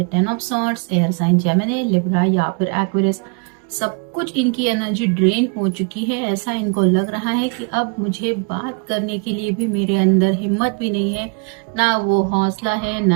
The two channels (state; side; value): quieter; left; 34.9 dB